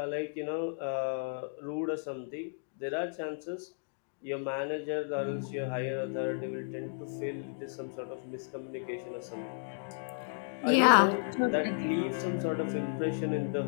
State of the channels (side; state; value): right; silent; digital silence